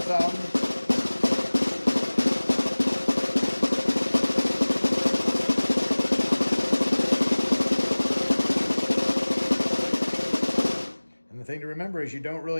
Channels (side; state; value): both; inverted; correlation -1.00